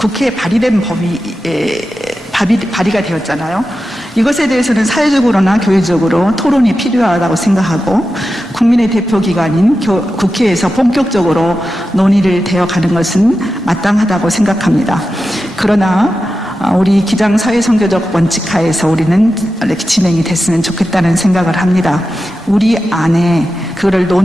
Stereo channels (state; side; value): normal; both; correlation 0.91